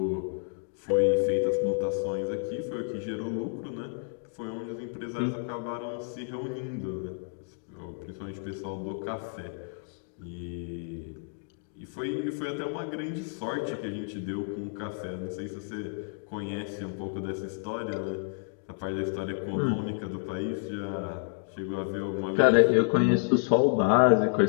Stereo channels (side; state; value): right; silent; digital silence